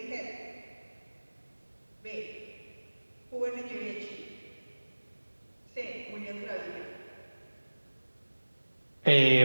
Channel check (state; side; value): inverted; both; correlation -1.00